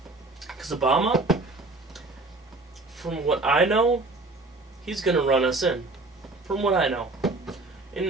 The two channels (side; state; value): left; quieter; 3.1 dB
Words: Because Obama, from what I know, he's gonna run us in. From what I know.